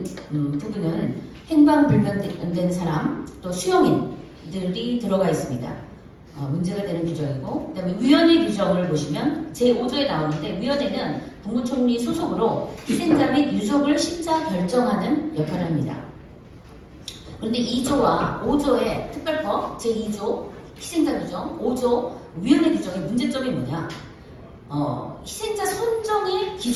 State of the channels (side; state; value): both; identical; correlation 1.00